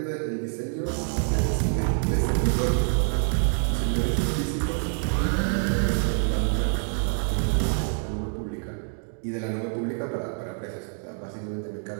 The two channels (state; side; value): silent; left; 61 dB below the other